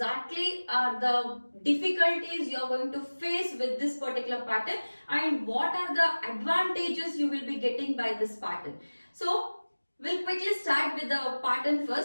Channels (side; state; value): both; inverted; correlation -1.00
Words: are the difficulties you are going to face with this particular pattern and what are the advantages you will be getting by this pattern. So we'll quickly start with the pattern